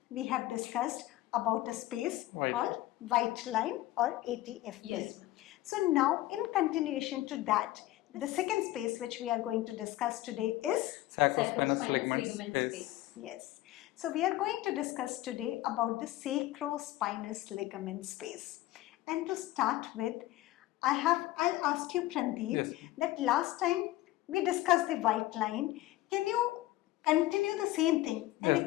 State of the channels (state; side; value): quieter; right; 16.4 dB